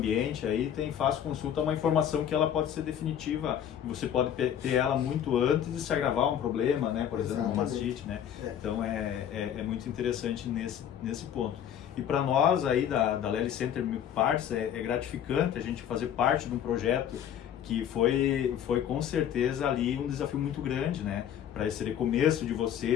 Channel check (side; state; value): right; quieter; 9.6 dB